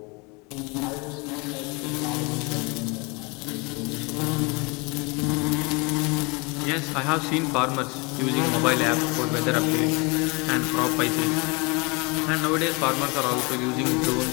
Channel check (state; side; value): quieter; right; 28.3 dB